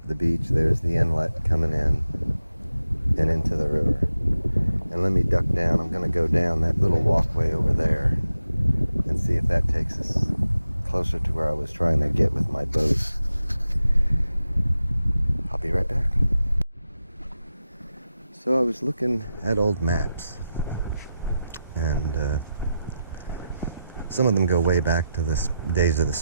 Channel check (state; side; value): inverted; both; correlation -0.89